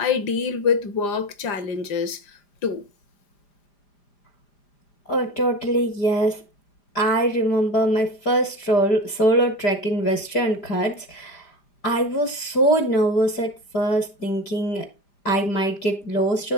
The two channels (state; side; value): late; right; 5.0 ms